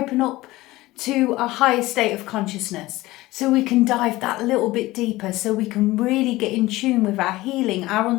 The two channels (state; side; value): quieter; right; 18.5 dB